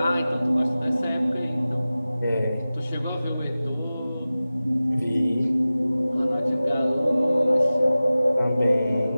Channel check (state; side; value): inverted; both; correlation -0.96